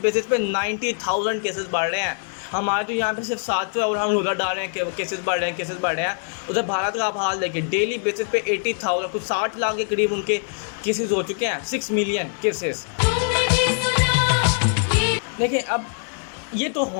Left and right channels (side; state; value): right; silent; 63 dB below the other